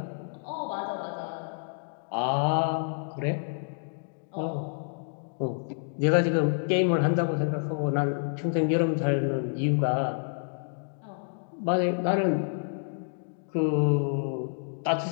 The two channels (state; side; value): silent; right; digital silence